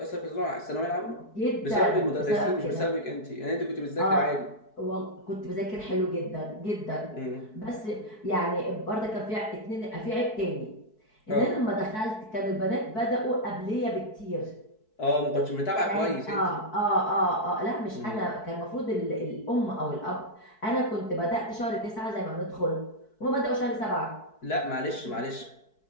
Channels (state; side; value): late; right; 4.6 ms